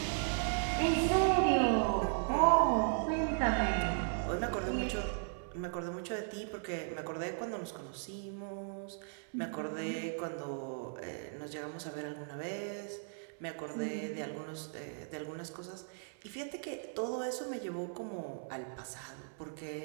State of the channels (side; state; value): left; silent; 53 dB below the other